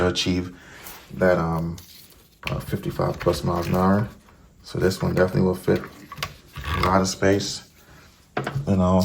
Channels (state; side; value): identical; both; correlation 1.00